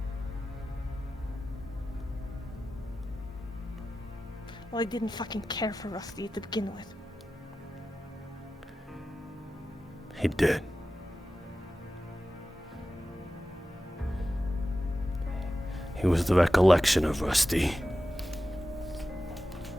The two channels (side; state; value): both; normal; correlation 0.94